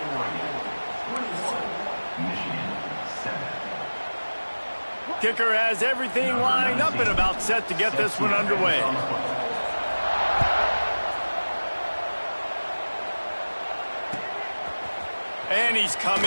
Kicker has everything lined up and about set to get this one underway. And he's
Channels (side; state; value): both; inverted; correlation -1.00